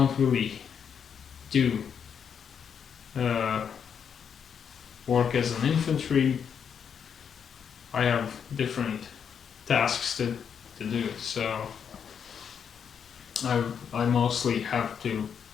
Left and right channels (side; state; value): right; quieter; 7.4 dB